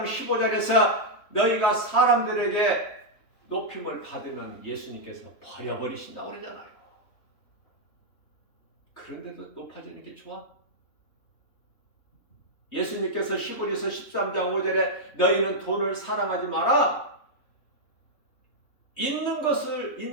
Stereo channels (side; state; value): right; late; 3.3 ms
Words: 15절에서 너희가 사람들에게 높임을 받으면 예수님께서 버려버리신다고 그러잖아요. 그런데도 높아지는 게 좋아? 예수님께서 시고리서 13장 5절에 너희는 돈을 사랑하지 마라. 있는 것을